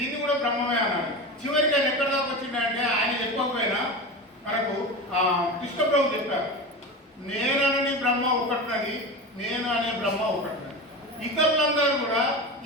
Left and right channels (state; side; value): normal; both; correlation 0.26